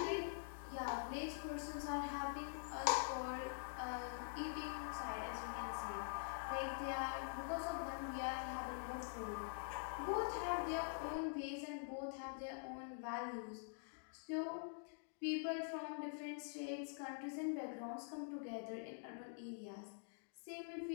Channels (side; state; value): right; silent; digital silence